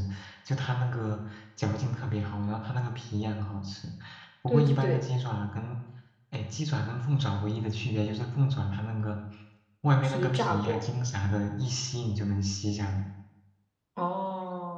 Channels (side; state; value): both; identical; correlation 1.00